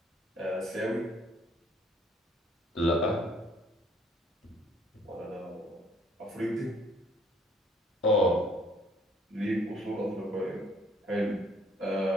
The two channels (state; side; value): normal; both; correlation 0.60